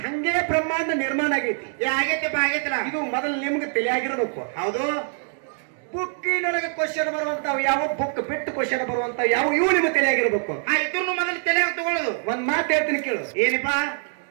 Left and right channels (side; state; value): left; silent; 60 dB below the other